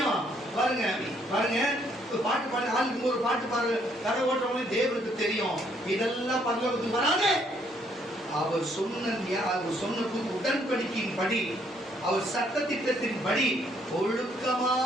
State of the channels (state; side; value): normal; both; correlation 0.68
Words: பாருங்க பாட்டு பாடி ஆளுக்கு ஒரு பாட்டு பாரு கதை ஓட்டுறவங்க தேவனுக்கு தெரியும். இதெல்லாம் பரலோகத்துக்கு வராது. அவர் சொன்ன உடன்படிக்கையின் படி, அவர் சட்ட திட்டத்தின் படி